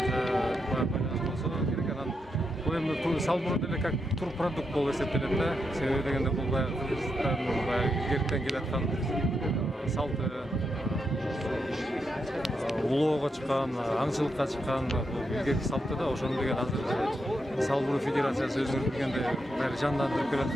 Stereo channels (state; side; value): normal; both; correlation 0.83